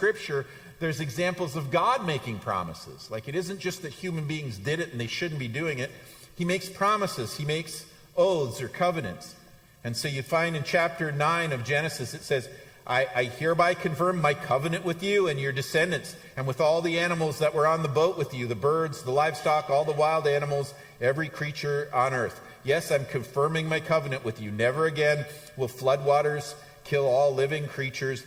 there's examples of God making promises. Like, it isn't just that human beings did it and they shouldn't be doing it. He makes promises. He makes oaths or covenants. And so you find in chapter 9 of Genesis, it says, I hereby confirm my covenant with you and your descendants, and with all the animals that were on the boat with you, the birds, the livestock, all the wild animals, every creature on earth. Yes, I'm confirming my covenant with you. Never again will floodwaters kill all living creatures.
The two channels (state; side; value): identical; both; correlation 1.00